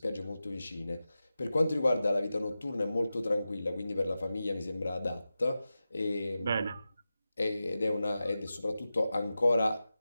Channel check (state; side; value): inverted; both; correlation -0.93